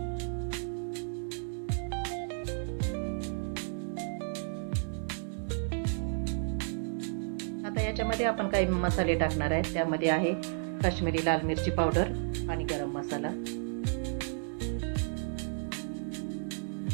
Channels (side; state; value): left; silent; 56 dB below the other